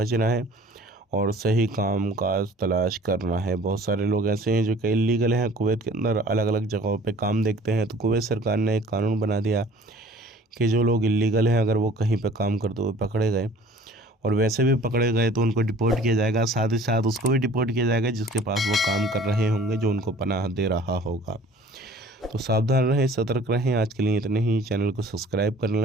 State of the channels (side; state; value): both; normal; correlation 0.50